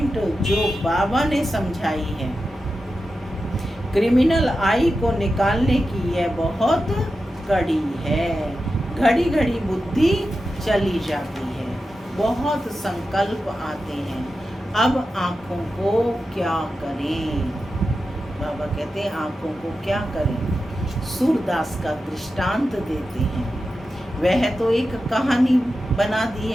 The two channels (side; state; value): both; normal; correlation 0.91